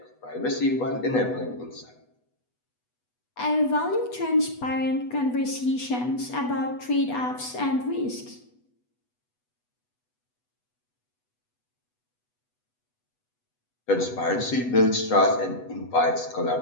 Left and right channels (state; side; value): late; right; 8.1 ms